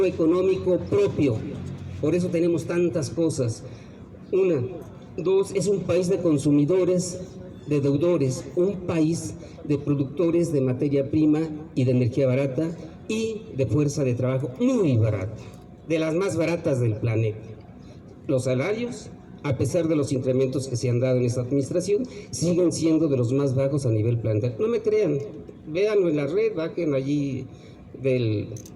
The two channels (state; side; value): identical; both; correlation 1.00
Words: económico propio, por eso tenemos tantas cosas. Una, dos, es un país de consumidores, de deudores, un país de productores de materia prima y de energía barata y de fuerza de trabajo muy barata, de las más baratas del planeta. Los salarios, a pesar de los incrementos que se han dado en esta administración, siguen siendo de los más bajos a nivel planetario. No me crean, véanlo en la red, bajen allí del